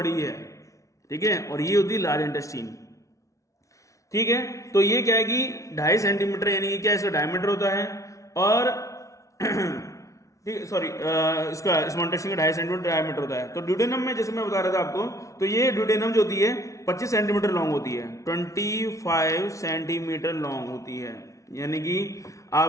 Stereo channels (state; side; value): late; right; 0.15 ms